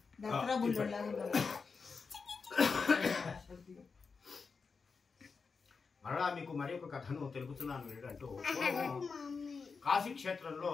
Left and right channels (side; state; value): right; quieter; 5.0 dB